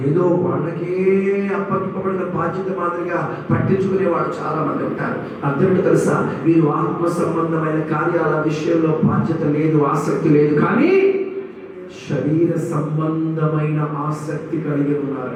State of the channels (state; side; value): identical; both; correlation 1.00